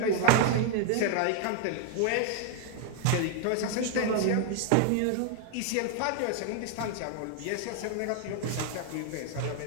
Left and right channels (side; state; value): both; different; correlation 0.00